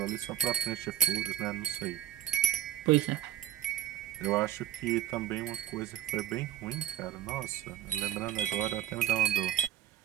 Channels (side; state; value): left; quieter; 11.9 dB